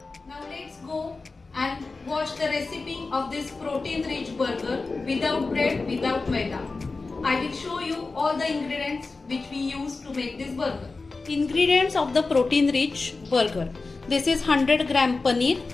Now let's go and watch the recipe of this protein rich burger without bread, without maida. I will show you all the ingredients which we use to make this burger. Ingredients of the protein rich burger. This is 100 gram paneer.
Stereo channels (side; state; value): right; quieter; 3.8 dB